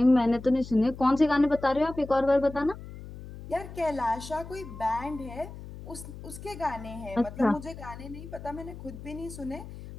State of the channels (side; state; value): left; noise; hum, 13 dB below the sound